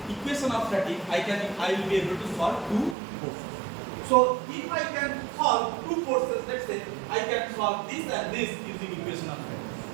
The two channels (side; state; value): left; drops out; at 3.0 s